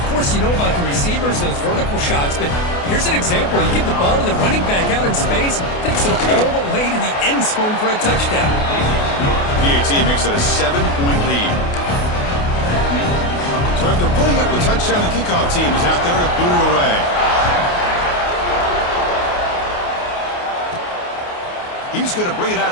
course, you know about the receivers, those vertical shots, but here's an example. You give the ball to the running back out in space, takes it all the way to the end zone for a touchdown. PAT makes it a 7-point lead. So after putting up the touchdown, the kickoff team is out there to boot it away. He's going to bring it out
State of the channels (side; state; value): right; late; 28 ms